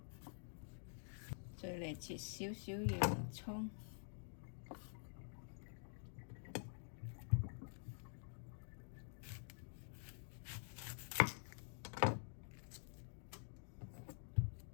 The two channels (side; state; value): right; silent; digital silence